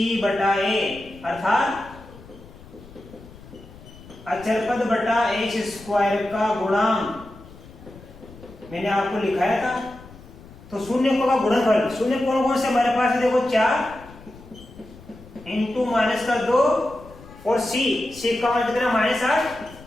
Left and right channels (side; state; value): left; noise; rumble, 19 dB below the sound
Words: बटा a, अर्थात अचरपद बटा x स्क्वायर का गुणांक, मैंने आपको लिखाया था। तो शून्यकों का गुणनफल, शून्य कौन कौन से हमारे पास है, देखो 4 इंटू माइनस का 2 और c का मान कितना -8